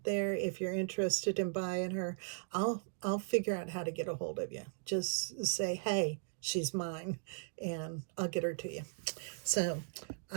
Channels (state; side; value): silent; left; digital silence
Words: there. If you're interested in buying her, I'll figure out how to get a hold of you. Just say, hey, she's mine, and I'll get her to you. So